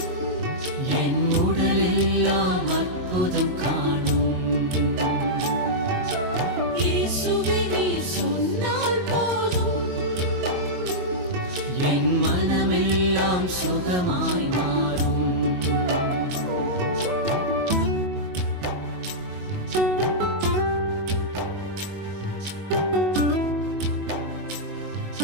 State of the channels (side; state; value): left; late; 22 ms